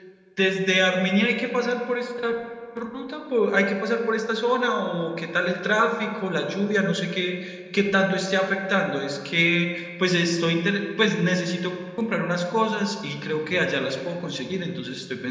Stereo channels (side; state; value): both; identical; correlation 1.00